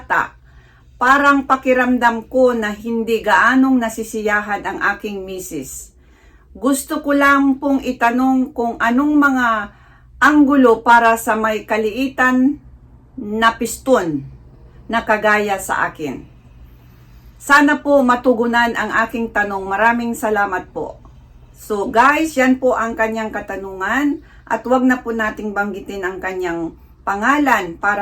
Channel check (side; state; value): both; identical; correlation 1.00